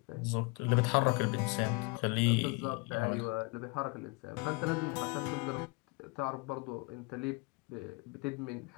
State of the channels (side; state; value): right; quieter; 28.8 dB